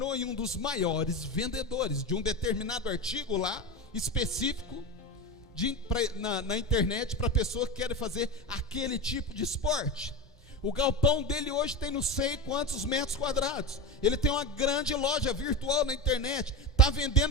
um dos maiores vendedores de um determinado artigo lá, específico, na internet, para pessoa que quer fazer aquele tipo de esporte. O galpão dele hoje tem não sei quantos metros quadrados. Ele tem uma grande loja virtual na internet, está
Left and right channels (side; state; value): both; normal; correlation 0.22